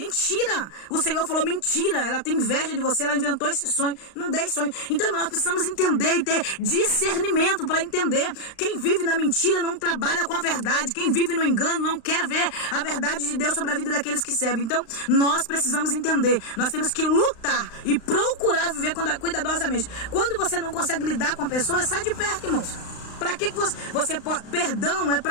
O Senhor falou mentira. Ela tem inveja de você, ela inventou esse sonho. Não dei sonho. Então nós precisamos entender e ter discernimento para entender. Quem vive na mentira não trabalha com a verdade. Quem vive no engano não quer ver a verdade de Deus sobre a vida daqueles que servem. Então nós precisamos entender. Nós temos que lutar e procurar viver cuidadosamente. Quando você não consegue lidar com a pessoa, sai de perto, irmãos. Para que você pode? Perdão é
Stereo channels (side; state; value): right; late; 35 ms